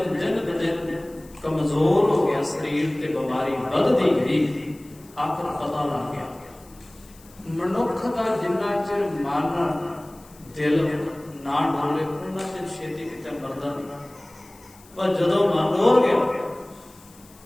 कमजोर हो गया शरीर ते बीमारी बढ़ती गई आखिर पता लग गया मनुख का जिन्ना चिर मन दिल ना डोले उन्ना चिर छेती किते मरदा नहीं पर जदों मन डोल गया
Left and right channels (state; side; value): noise; left; hiss, 25 dB below the sound